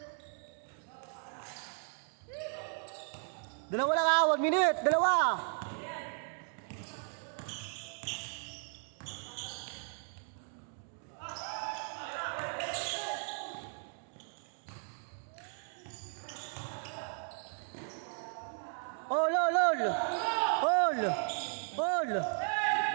Dalawa lang ha, 1 minute, 2. Ol.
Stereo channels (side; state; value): left; silent; 54 dB below the other